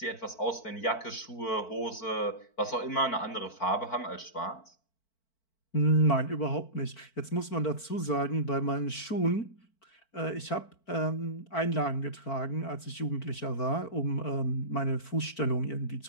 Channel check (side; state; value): right; late; 4.5 ms